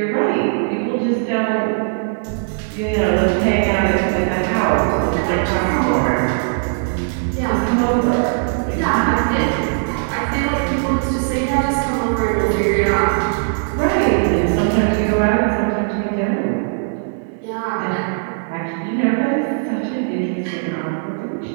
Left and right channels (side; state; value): left; silent; digital silence